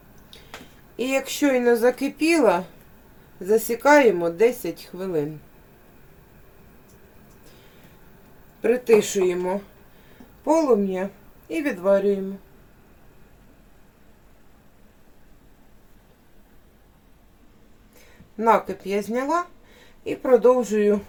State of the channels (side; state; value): both; identical; correlation 1.00